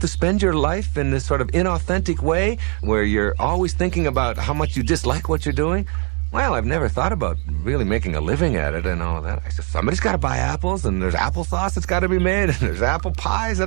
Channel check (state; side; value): quieter; left; 36.6 dB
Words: spend your life in this sort of inauthentic way where you're always thinking about how much you dislike what you're doing? Well, I've never thought about really making a living at it and all of that. I said, somebody's got to buy apples, and there's applesauce that's got to be made, and there's apple pies